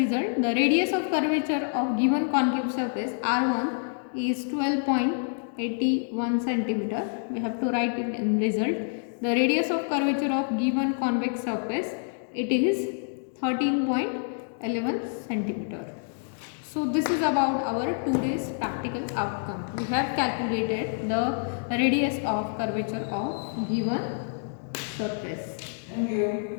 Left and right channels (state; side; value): silent; right; digital silence